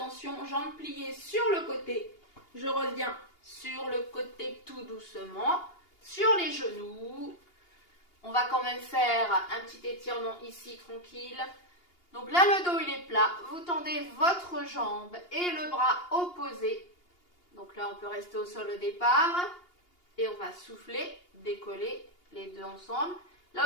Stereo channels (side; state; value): right; late; 2.8 ms